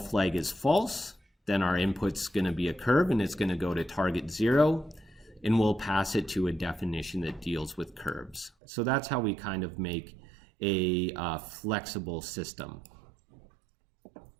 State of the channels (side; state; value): left; drops out; at 8.5 s